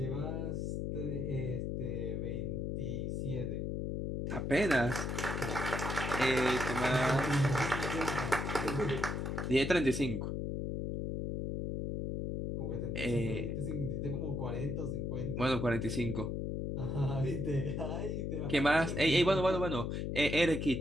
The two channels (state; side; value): noise; left; hum, 2 dB below the sound